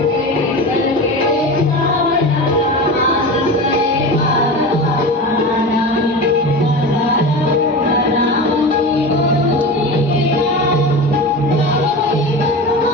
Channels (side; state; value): both; normal; correlation 0.28